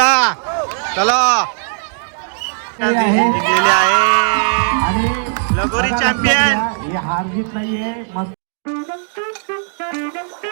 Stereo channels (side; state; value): left; silent; digital silence